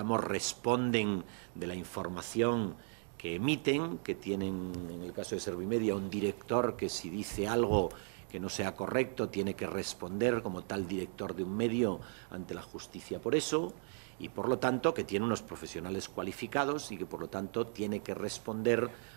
responden de la información que emiten, que tienen, en el caso de Servimedia, un director que si dice algo que no sea correcto tiene que responder como tal director de un medio ante la justicia por eso, y por lo tanto que tiene unos profesionales cualificados y que por lo tanto tiene que responder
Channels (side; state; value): left; silent; 54 dB below the other